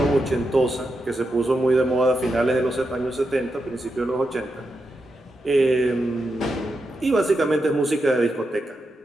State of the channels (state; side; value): normal; both; correlation 0.86